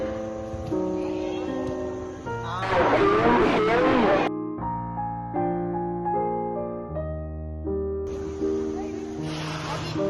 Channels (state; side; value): identical; both; correlation 1.00